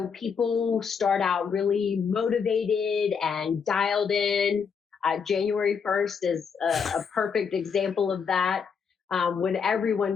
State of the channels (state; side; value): quieter; right; 6.2 dB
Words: people start out really motivated and dialed in. January 1st is a perfect example of that. When